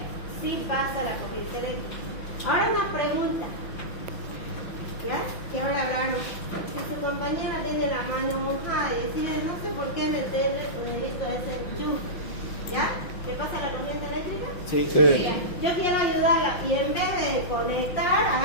sí pasa la corriente eléctrica. Ahora una pregunta, ¿ya? Que ahora hablaron. Si su compañera tiene la mano mojada y decide, no sé por qué meterle su dedito a ese enchufe, ¿ya? ¿Le pasa la corriente eléctrica? Sí. Ya. Yo quiero ayudarla y en vez de conectar,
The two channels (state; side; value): late; right; 5.8 ms